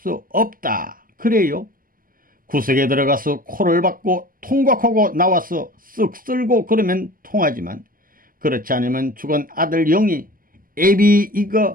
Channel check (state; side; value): late; left; 0.41 ms